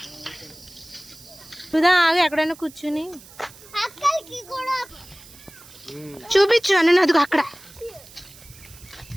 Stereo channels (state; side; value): noise; right; hiss, 21 dB below the sound